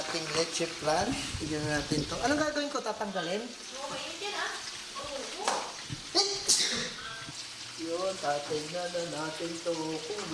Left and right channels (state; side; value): identical; both; correlation 1.00